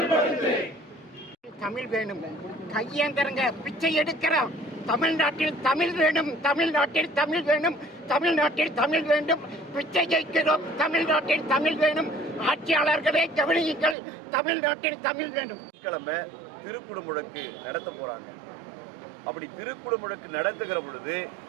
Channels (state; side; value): drops out; left; at 14.0 s